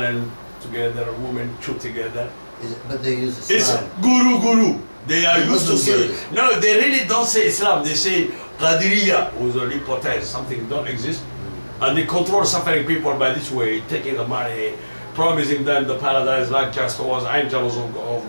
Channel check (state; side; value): inverted; both; correlation -1.00